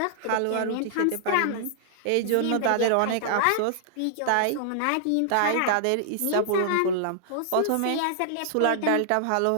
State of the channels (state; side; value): different; both; correlation -0.01